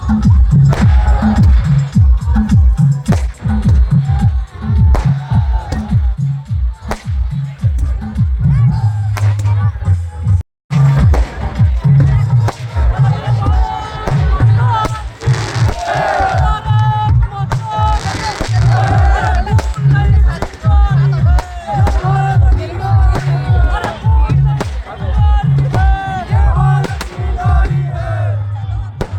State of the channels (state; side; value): identical; both; correlation 1.00